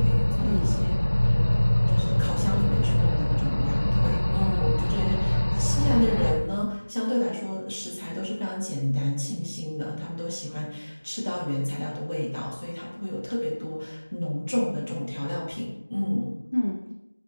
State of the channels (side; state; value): both; inverted; correlation -1.00